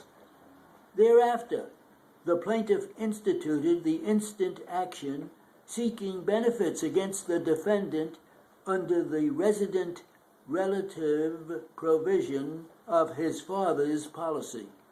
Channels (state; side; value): identical; both; correlation 1.00